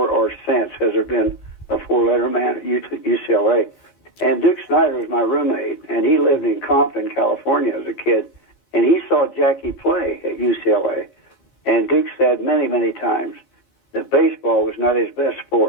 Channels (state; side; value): late; right; 15 ms